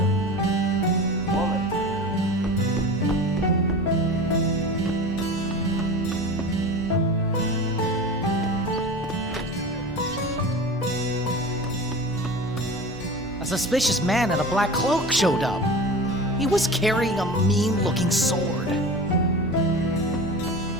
Woman. A suspicious man in a black cloak showed up. He was carrying a mean-looking sword.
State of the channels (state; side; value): normal; both; correlation 0.33